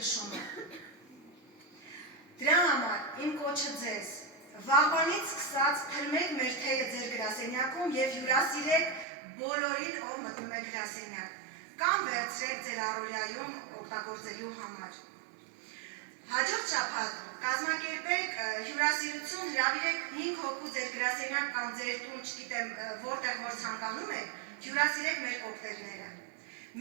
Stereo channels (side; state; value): left; drops out; at 9.1 s